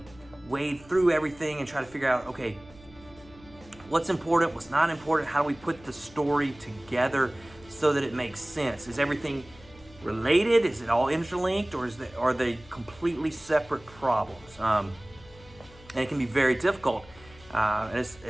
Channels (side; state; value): left; noise; hum, 23 dB below the sound